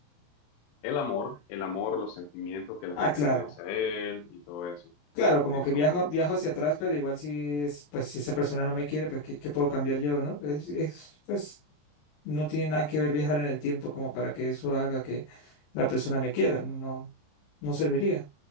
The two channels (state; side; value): late; right; 34 ms